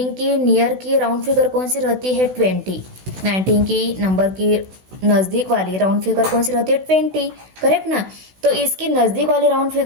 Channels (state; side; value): late; left; 16 ms